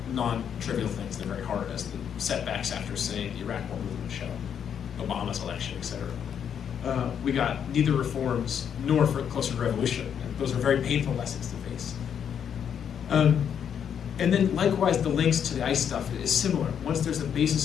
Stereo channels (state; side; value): quieter; right; 8.3 dB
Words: non-trivial things. They're very hard, as the setbacks after, say, the Iraq War movement show, Obama's election, etc. We got neither reforms nor for closer to revolution. And those are very painful lessons to face. And then likewise, the links to the ICE stuff is similar. Once there's a